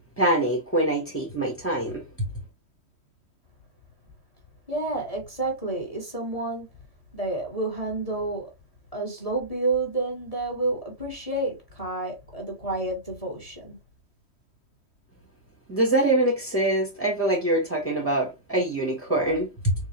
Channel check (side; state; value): right; late; 3.1 ms